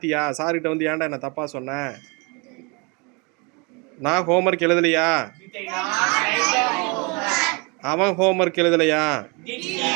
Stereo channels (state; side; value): quieter; left; 30.5 dB